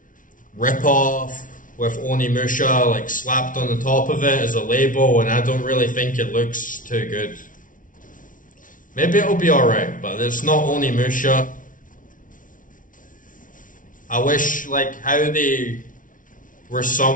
rip-off with Onimusha like slapped on the top of it as a label, and I don't really think it looks too good. Maybe it'll be alright, but it's not Onimusha. I wish like how they were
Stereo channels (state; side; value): late; right; 0.38 ms